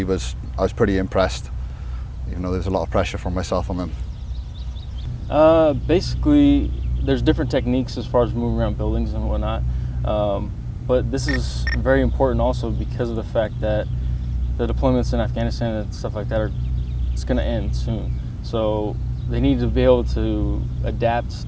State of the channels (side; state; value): both; identical; correlation 1.00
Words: I was pretty impressed, even though there's a lot of pressure from myself on them. Basically, there's different techniques as far as moving around buildings and whatnot, but this is very important also because of the fact that the deployments in Afghanistan and stuff like that it's going to end soon. So they need to be able to adapt